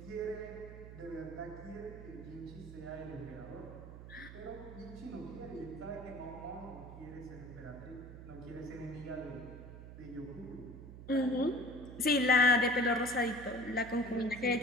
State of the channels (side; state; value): right; noise; hum, 13 dB below the sound